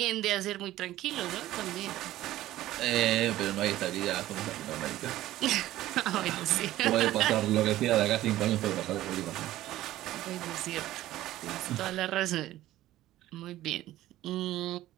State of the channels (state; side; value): quieter; left; 14.9 dB